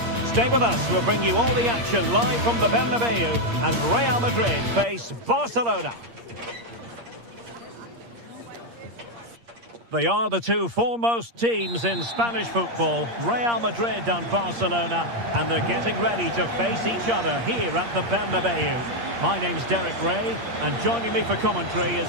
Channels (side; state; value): left; late; 8.6 ms